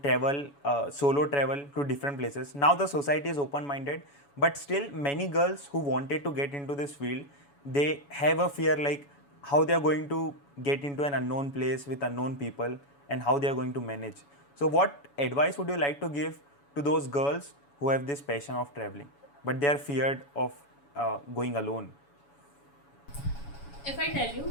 travel solo travel to different places. Now the society is open minded, but still many girls who wanted to get into this field, they have a fear like how they are going to get into an unknown place with unknown people and how they are going to manage. So what advice would you like to give to those girls who have this passion of traveling but they are feared of going alone? If I tell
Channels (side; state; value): right; late; 7.1 ms